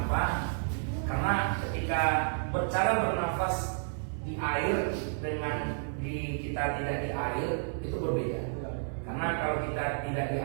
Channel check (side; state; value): left; silent; digital silence